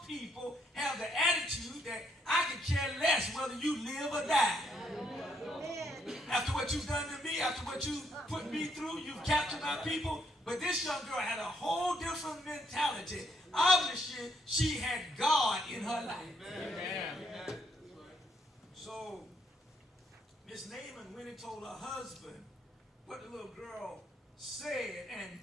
people have the attitude that I could care less whether you live or die. After what you've done to me, after what you put me through, you've captured my people. But this young girl had a whole different mentality. Obviously, she had God in her life. Amen. So, Miss Naaman went and told her husband what the little girl said,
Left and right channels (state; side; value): normal; both; correlation 0.72